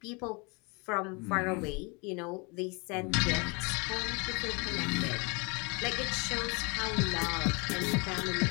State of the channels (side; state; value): right; quieter; 30.3 dB